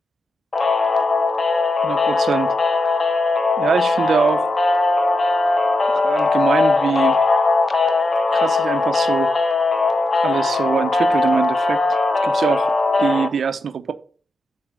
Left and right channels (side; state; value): both; normal; correlation 0.86